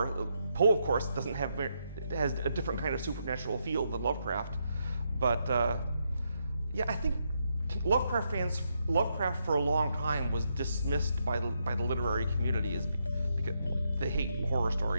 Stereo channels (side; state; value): both; inverted; correlation -0.80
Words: Poe, of course, has a different kind of supernatural feel than Lovecraft. But yeah, I think Lovecraft for a long time was dismissed by the literary community because they hate horror